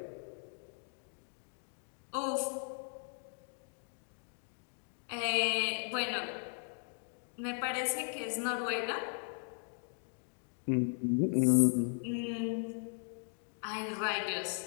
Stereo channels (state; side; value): silent; right; 53 dB below the other